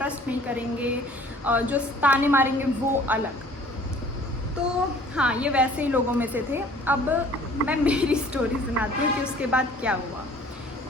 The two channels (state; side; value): normal; both; correlation 0.52